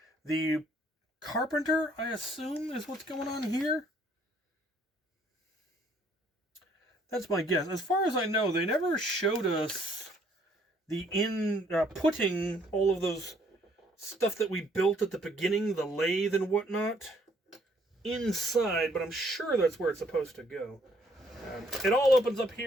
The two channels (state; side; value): normal; both; correlation 0.65